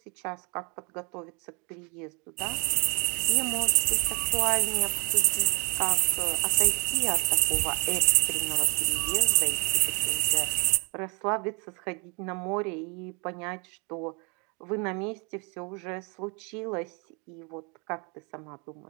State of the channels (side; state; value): left; quieter; 32.7 dB